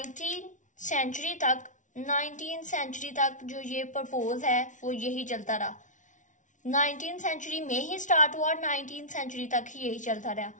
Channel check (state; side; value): late; right; 0.37 ms